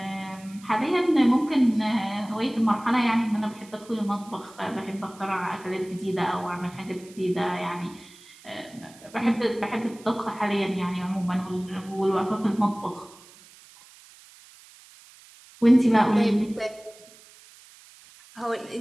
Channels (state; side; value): noise; right; hiss, 23 dB below the sound